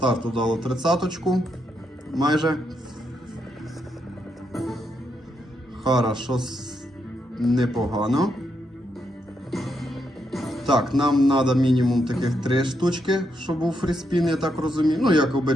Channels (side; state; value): both; normal; correlation 0.80